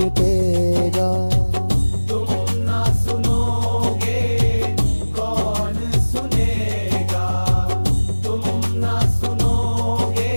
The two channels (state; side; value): inverted; both; correlation -1.00